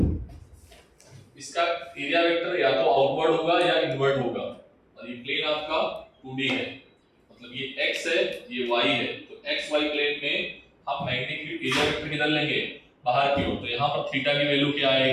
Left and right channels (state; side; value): identical; both; correlation 1.00